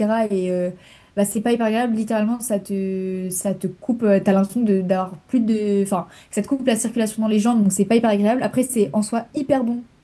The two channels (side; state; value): both; identical; correlation 1.00